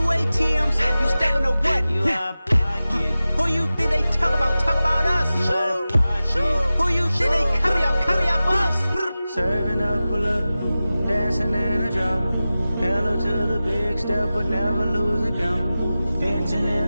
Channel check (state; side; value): inverted; both; correlation -0.95